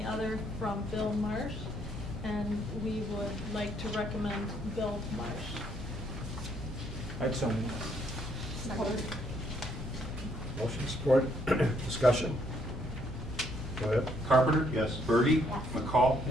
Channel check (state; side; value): normal; both; correlation 0.70